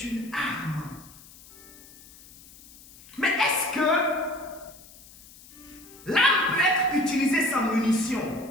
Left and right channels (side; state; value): left; noise; hiss, 22 dB below the sound